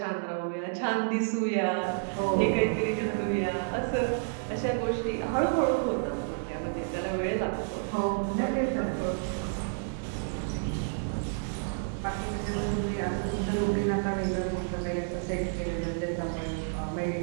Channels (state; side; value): silent; left; digital silence